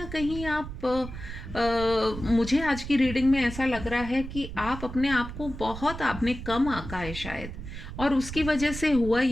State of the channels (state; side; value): noise; right; rumble, 10 dB below the sound